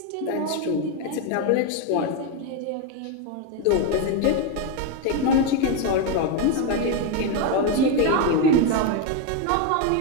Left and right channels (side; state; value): both; different; correlation 0.02